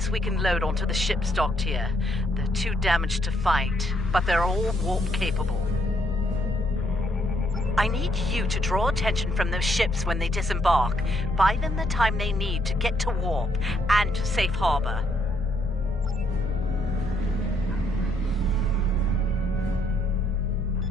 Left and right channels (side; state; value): both; normal; correlation 0.73